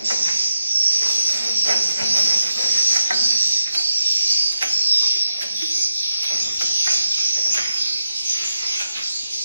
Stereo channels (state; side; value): inverted; both; correlation -0.87